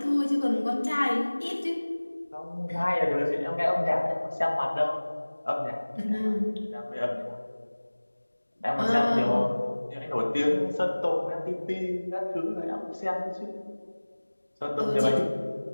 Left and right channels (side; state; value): both; inverted; correlation -1.00